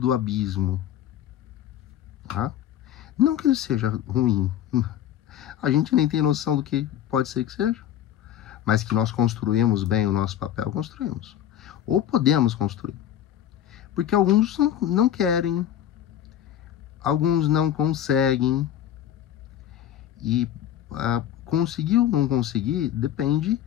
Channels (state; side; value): quieter; right; 11.0 dB